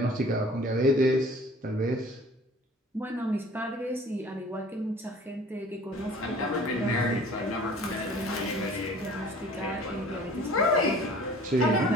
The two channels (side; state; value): both; normal; correlation 0.48